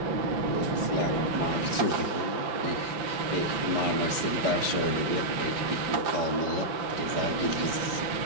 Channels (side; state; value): left; late; 5.9 ms